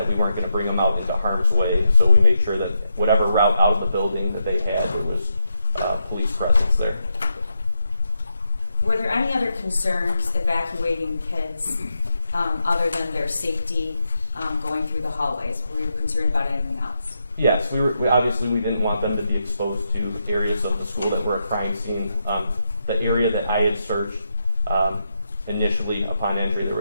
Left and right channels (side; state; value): both; inverted; correlation -0.83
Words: we weren't going to bring them out into harm's way, so we made sure that whatever route out of the building that they had, there was police presence there. Were there any other concerns evacuating kids other than their safety going through the hallways? Were you concerned about anything else? Yes, we obviously we didn't want them to be exposed to areas of the school that were a crime scene. The area that I had searched initially upon entry,